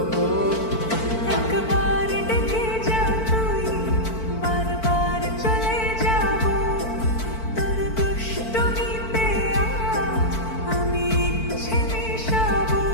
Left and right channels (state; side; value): late; right; 4.5 ms